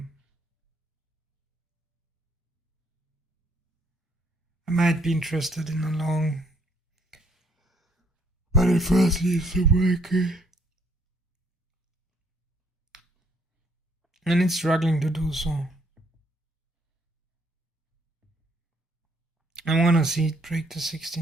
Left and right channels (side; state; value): both; normal; correlation 0.66